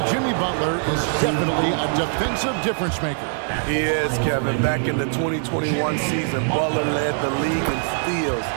Jimmy Butler is definitely a defensive difference maker. He is, Kevin. Back in the 2021 season, Butler led the league in steals.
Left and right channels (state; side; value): silent; left; digital silence